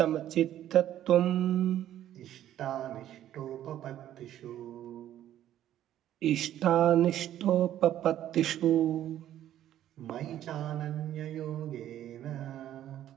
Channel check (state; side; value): quieter; left; 11.9 dB